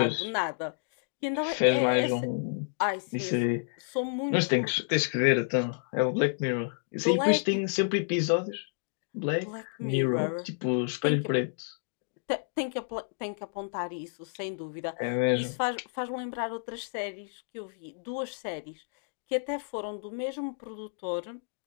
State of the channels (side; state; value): right; silent; digital silence